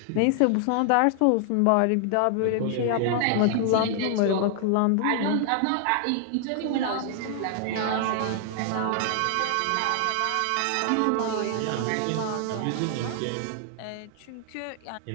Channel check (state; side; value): different; both; correlation 0.00